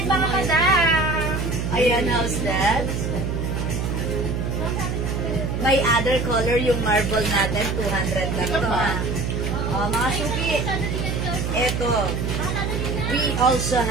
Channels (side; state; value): right; noise; hum, 1 dB below the sound